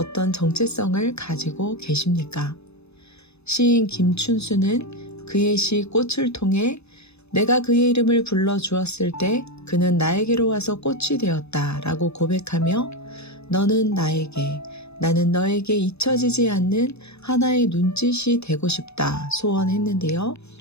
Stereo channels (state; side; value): late; right; 0.79 ms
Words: 정체성을 가지고 계십니까? 시인 김춘수는 그의 시 꽃을 통해 내가 그의 이름을 불러주었을 때 그는 나에게로 와서 꽃이 되었다 라고 고백하며 너는 나에게, 나는 너에게 잊혀지지 않는 하나의 눈짓이 되고 싶다 소원했는데요.